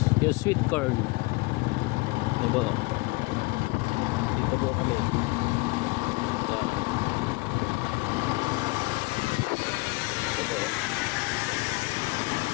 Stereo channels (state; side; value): quieter; right; 25.1 dB